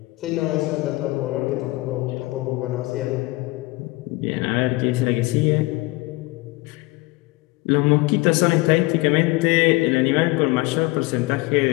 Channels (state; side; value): quieter; right; 22.1 dB